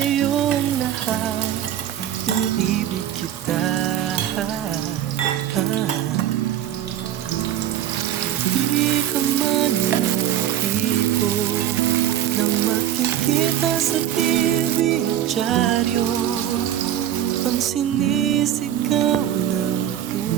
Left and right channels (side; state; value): left; quieter; 11.2 dB